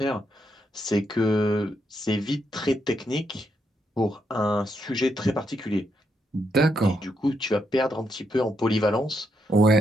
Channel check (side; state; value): both; normal; correlation 0.79